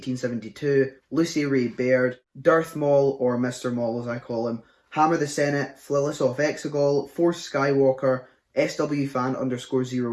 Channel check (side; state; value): both; identical; correlation 1.00